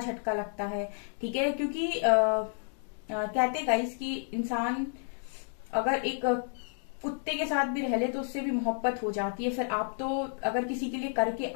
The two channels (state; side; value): silent; right; 57 dB below the other